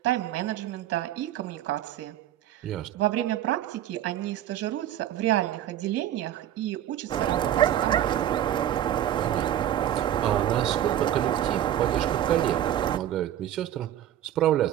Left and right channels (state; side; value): quieter; left; 11.6 dB